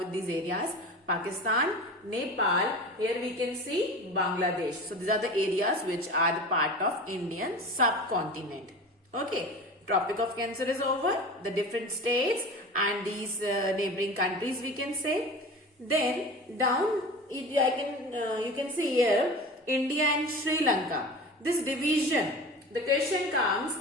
these areas. Pakistan, Nepal, here we can see Bangladesh. So these are the areas which are the part of Indian subcontinent. Okay, Tropic of Cancer is over. The different states and these neighboring countries we can say. Then down you can see here India and Sri Lanka. This division, the question comes,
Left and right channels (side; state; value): both; normal; correlation 0.34